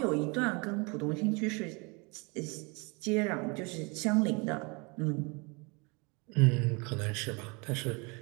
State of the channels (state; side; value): quieter; left; 29.8 dB